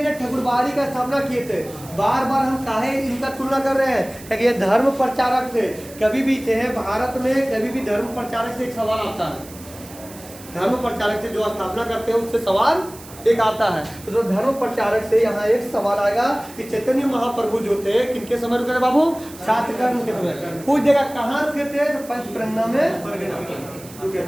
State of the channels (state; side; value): noise; right; hiss, 18 dB below the sound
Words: ना ठाकुरबाड़ी का स्थापना किए थे। बार बार हम काहे इनका तुलना कर रहे हैं, क्योंकि ये धर्म प्रचारक थे, कभी भी थे भारत में, कभी भी धर्म प्रचारक से एक सवाल आता है। धर्म प्रचारक से जो स्थापना करते हैं उससे सवाल एक आता है। तो जो धर्म प्रचारक से यहाँ एक सवाल आएगा कि चैतन्य महाप्रभु जो थे किनके समय रुके थे बाबू, छात्र कर्ण के समय। पूछ देगा कहाँ रुके थे, तो पंचप्रज्ञा में रुके